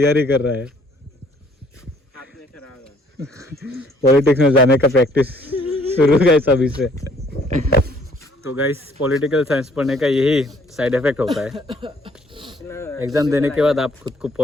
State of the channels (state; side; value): normal; both; correlation 0.62